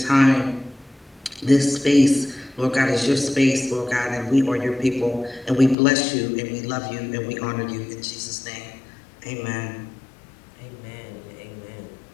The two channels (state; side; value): drops out; right; at 5.8 s